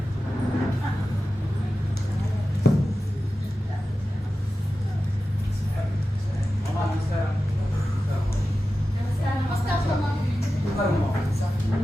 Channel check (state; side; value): normal; both; correlation 0.93